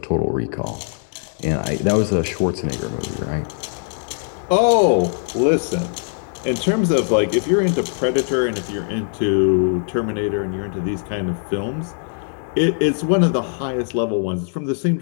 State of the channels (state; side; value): silent; right; 65 dB below the other